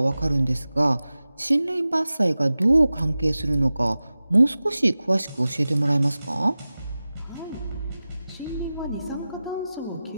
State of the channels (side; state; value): both; inverted; correlation -0.96